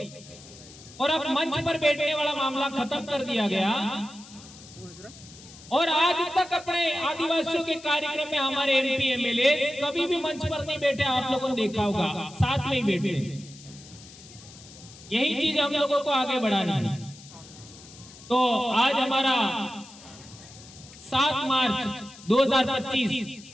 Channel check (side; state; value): left; noise; hiss, 19 dB below the sound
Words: और अब मंच पर बैठने वाला मामला खत्म कर दिया गया। और आज तक अपने आदिवासियों के कार्यक्रम में हमारे एमपी एमएलए कभी भी मंच पर नहीं बैठे, आप लोगों ने देखा होगा, साथ में ही बैठे। यही चीज हम लोगों को आगे बढ़ानी है। तो आज हमारा 7 मार्च 2025